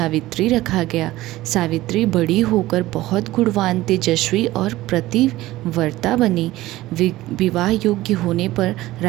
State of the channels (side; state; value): left; quieter; 16.9 dB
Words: रखा गया। सावित्री बड़ी होकर बहुत गुणवान, तेजस्वी और पतिव्रता बनी। विवाह योग्य होने पर